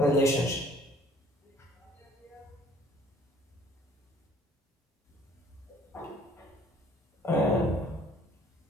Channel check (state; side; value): normal; both; correlation 0.57